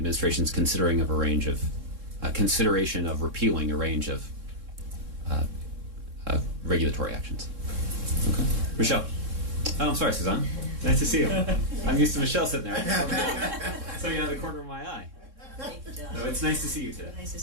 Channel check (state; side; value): late; left; 3.6 ms